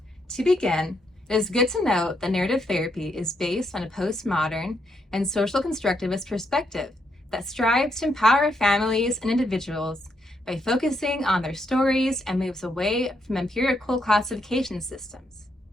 To begin, it is good to note that narrative therapy is based on a postmodern and social constructivist perspective that strives to empower families and individuals by focusing on their stories and moves away from empirical classification systems.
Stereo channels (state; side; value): normal; both; correlation 0.78